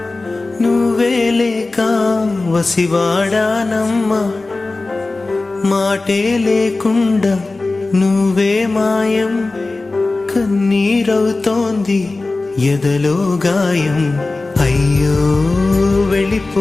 నువ్వే లేక వసివాడానమ్మా మాటే లేకుండా నువ్వే మాయం కన్నీరవుతోంది ఎదలో గాయం అయ్యో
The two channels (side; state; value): right; quieter; 3.3 dB